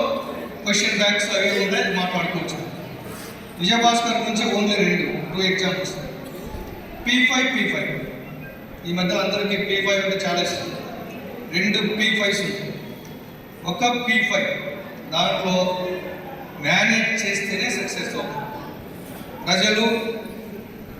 క్వశ్చన్ బ్యాంక్స్ అవి ఉంటాయి, మాట్లాడుకోవచ్చు. విజయభాస్కర్ గురించి ఓన్లీ 2 ఎగ్జాంపుల్స్. P5 ఈ మధ్య అందరికీ P5 అంటే చాలా ఇష్టం. 2 P5s. ఒక P5 దాంట్లో మేనేజ్ చేస్తేనే సక్సెస్ అవుతుంది. ప్రజలు,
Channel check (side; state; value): both; identical; correlation 1.00